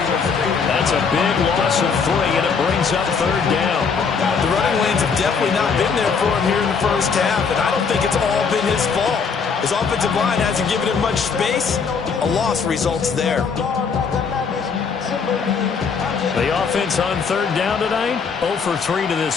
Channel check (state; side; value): quieter; right; 5.7 dB